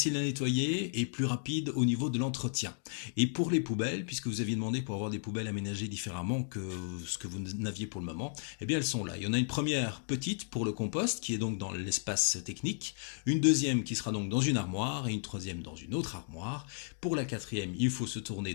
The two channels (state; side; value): silent; right; digital silence